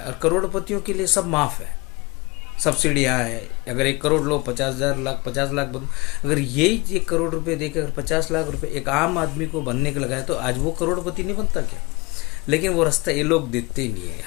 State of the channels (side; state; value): right; quieter; 25.7 dB